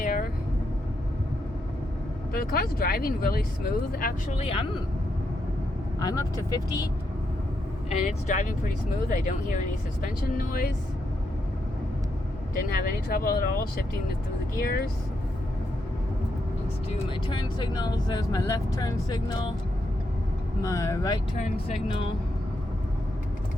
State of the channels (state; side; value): normal; both; correlation 0.81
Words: But the car's driving really smooth, actually. I'm up to 50, and it's driving pretty smooth. I don't hear any suspension noise. Didn't have any trouble at all shifting it through the gears. Let's do my turn signals. There's my left turn signal, my right turn signal,